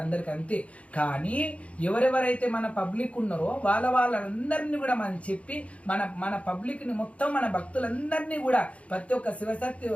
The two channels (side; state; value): right; late; 0.064 ms